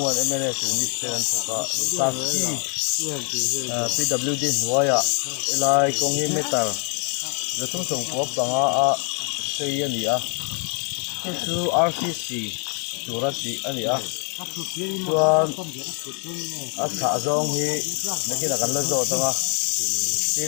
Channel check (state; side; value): quieter; right; 39.8 dB